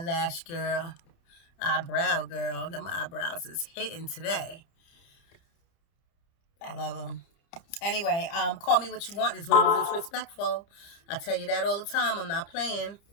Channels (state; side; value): late; right; 30 ms